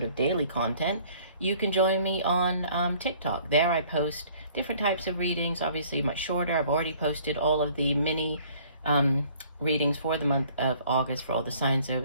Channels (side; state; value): both; inverted; correlation -0.56